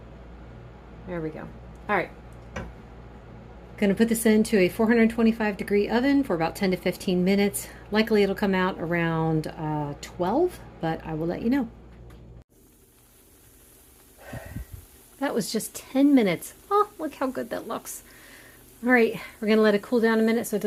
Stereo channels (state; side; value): identical; both; correlation 1.00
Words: there we go. All right, gonna put this into a 425-degree oven for about 10 to 15 minutes. Likely it'll come out around 12, but I will let you know. That was just 10 minutes. Oh, look how good that looks. All right, we're gonna let it cool down a minute so it